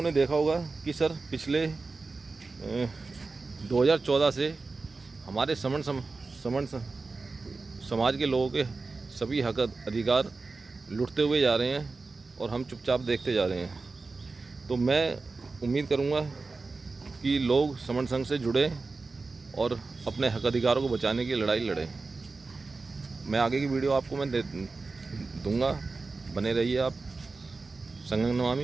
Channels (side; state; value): left; quieter; 3.9 dB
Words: ने देखा होगा कि सर पिछले 2014 से हमारे समण समाज के लोगों के सभी हक अधिकार लुटते हुए जा रहे हैं और हम चुपचाप देखते जा रहे हैं। तो मैं उम्मीद करूंगा कि लोग समण संघ से जुड़े और अपने हक अधिकारों को बचाने की लड़ाई लड़ें। मैं आगे की वीडियो आपको मैं दूंगा, बने रहिए आप। संघं